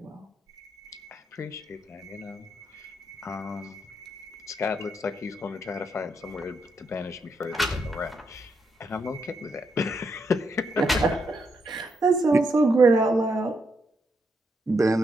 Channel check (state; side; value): normal; both; correlation 0.79